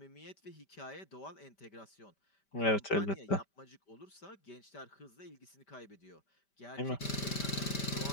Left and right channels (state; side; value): late; right; 5.1 ms